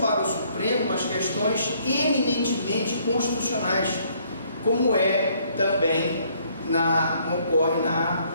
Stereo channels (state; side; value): inverted; both; correlation -0.65